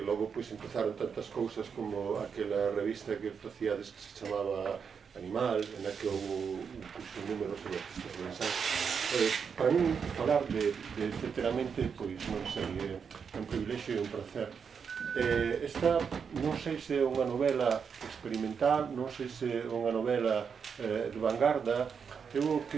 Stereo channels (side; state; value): left; quieter; 6.4 dB